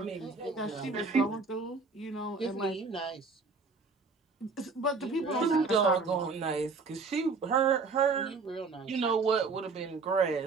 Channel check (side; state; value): left; quieter; 4.4 dB